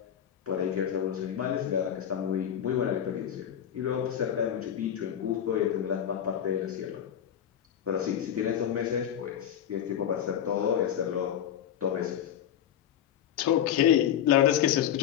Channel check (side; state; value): right; quieter; 9.8 dB